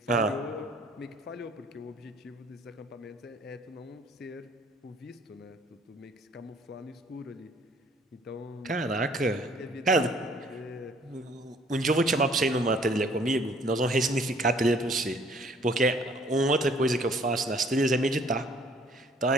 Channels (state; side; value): normal; both; correlation 0.58